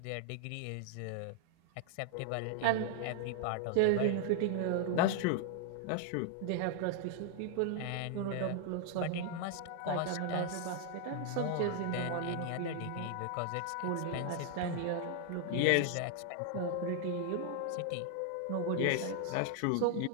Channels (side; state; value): both; different; correlation 0.00